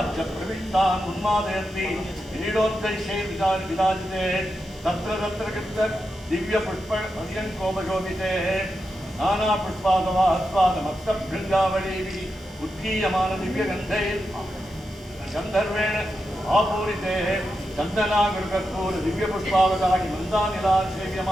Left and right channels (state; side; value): normal; both; correlation 0.88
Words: प्रविष्टान् उन्मादयन्ति क्रीडोत्कर्षे विराजिते तत्र तत्र कृत दिव्य पुष्प पर्यङ्कोपशोभिते नाना पुष्पादवास्वाद मत्तभृङ्गावलीभिः उद्गीयमान दिव्य गन्धर्वेण आपूरिते चन्दनागुरुकर्पूर दिव्य पुष्पावतानि मन्दानिला